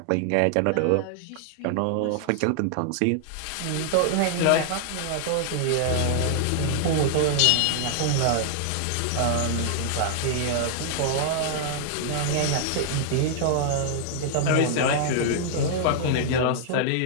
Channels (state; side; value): different; both; correlation -0.01